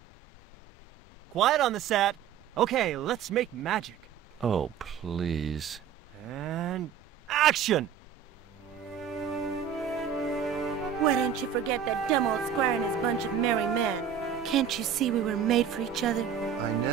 Quiet on the set. Okay, let's make magic. Oh, please. And action! Why didn't you forget that dumb old squire and his bunch of merry men? Can't you see we were made for each other? I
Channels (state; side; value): quieter; left; 8.3 dB